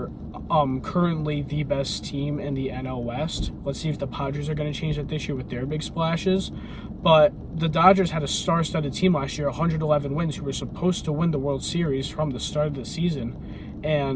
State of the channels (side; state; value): both; identical; correlation 1.00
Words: currently the best team in the NL West. Let's see if the Padres are going to change that this year with their big splashes. But the Dodgers had a star-studded team last year, 111 wins, who were supposed to win the World Series from the start of the season,